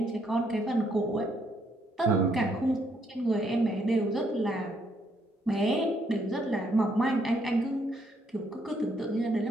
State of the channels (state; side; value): normal; both; correlation 0.72